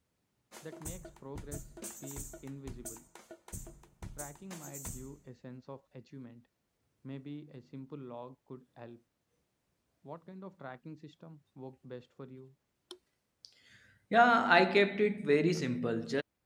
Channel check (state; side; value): identical; both; correlation 1.00